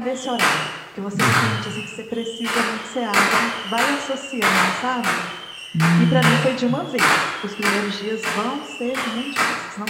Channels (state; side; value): identical; both; correlation 1.00